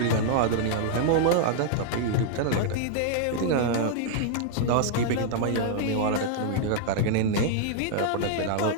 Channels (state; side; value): different; both; correlation -0.01